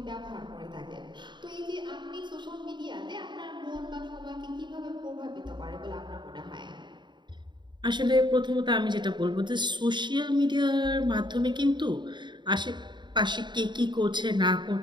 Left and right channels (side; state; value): left; late; 0.22 ms